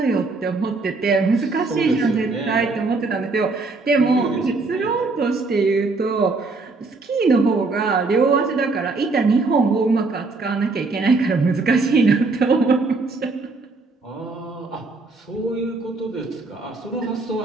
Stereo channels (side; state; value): left; quieter; 3.7 dB